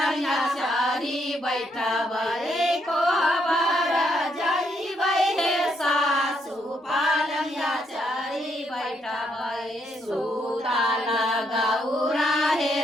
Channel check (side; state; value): both; normal; correlation 0.75